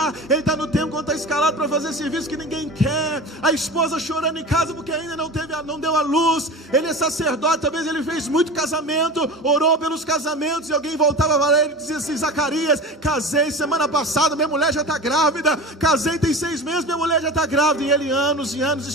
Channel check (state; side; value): normal; both; correlation 0.32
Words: ele está no tempo quando está escalado para fazer serviço que ninguém quer, a esposa chorando em casa porque ainda não deu a luz, ele é sacerdote, talvez ele fez muito casamento, orou pelos casamentos, e alguém voltava para ele e dizia assim: Zacarias, casei semana passada, minha mulher já está grávida, casei tem 6 meses, minha mulher já está grávida, e ele anos e anos